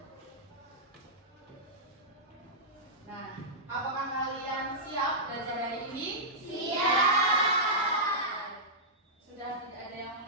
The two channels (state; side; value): normal; both; correlation -0.13